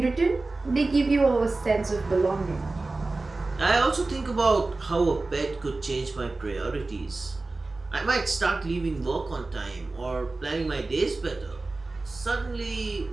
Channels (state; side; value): quieter; left; 3.4 dB